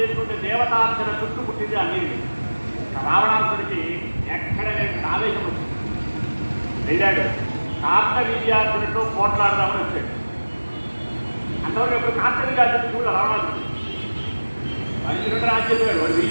దేవతార్చన చుట్టూ పుట్టింది ఆ నీరు. రావణాసురుడికి ఎక్కడ లేని ఆవేశం వచ్చింది. వెళ్ళాడు, కార్తవీర్యార్జునుడితో పోట్లాడదామని వచ్చాడు. అంతవరకు ఎప్పుడు కార్తవీర్యార్జునుడు కూడా రావణాసురుడు అర్జునుడు రాజ్యం వాడు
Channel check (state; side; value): inverted; both; correlation -1.00